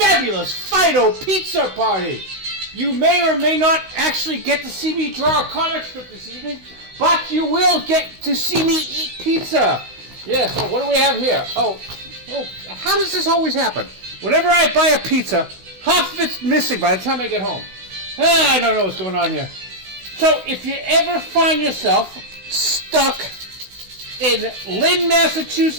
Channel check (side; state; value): left; late; 16 ms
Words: Fido pizza party. You may or may not actually get to see me draw a comic strip this evening, but you will get to see me eat pizza. Yeah, so what do we have here? Oh, how does this always happen? Whenever I buy a pizza, half of it's missing by the time I get home. I don't know what's going on here. So if you ever find yourself stuck in Lynn,